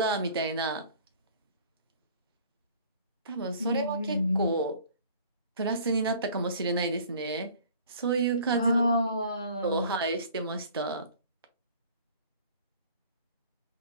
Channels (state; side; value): inverted; both; correlation -0.50